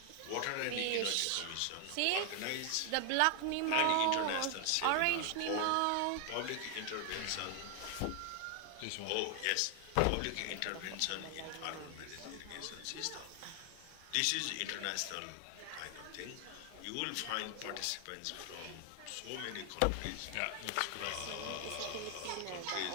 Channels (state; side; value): different; both; correlation 0.00